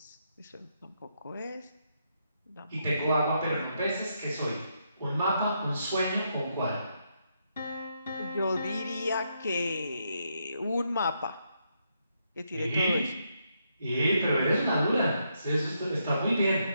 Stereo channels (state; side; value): inverted; both; correlation -0.79